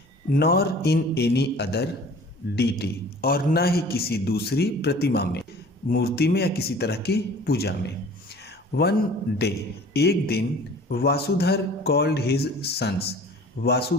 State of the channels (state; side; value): normal; both; correlation 0.46